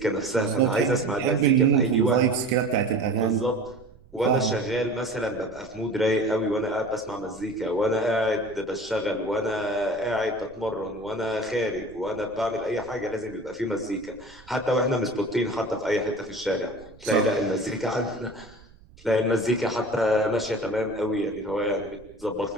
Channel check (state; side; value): noise; right; rumble, 24 dB below the sound